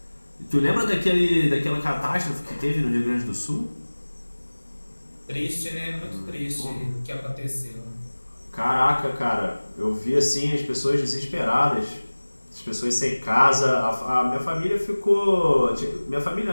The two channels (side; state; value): both; inverted; correlation -1.00